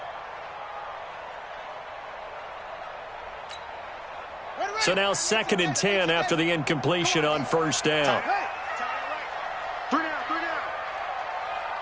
So now 2nd and 10 after the incompletion on 1st down.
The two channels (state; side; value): identical; both; correlation 1.00